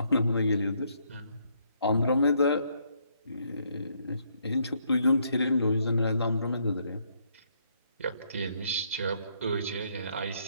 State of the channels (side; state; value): both; inverted; correlation -0.72